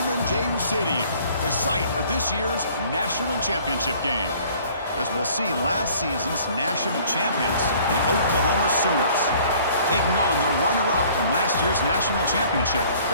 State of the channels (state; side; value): inverted; both; correlation -0.54